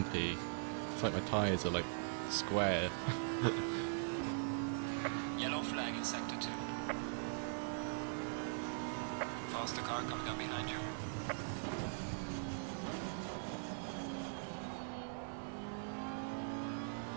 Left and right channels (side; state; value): left; silent; digital silence